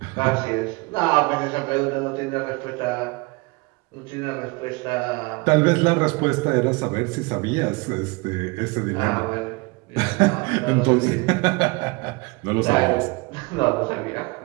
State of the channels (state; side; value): quieter; left; 26.7 dB